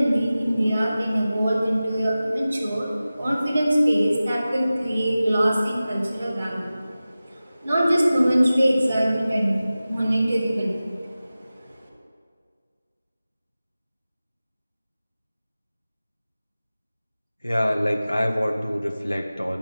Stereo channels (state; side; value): inverted; both; correlation -0.96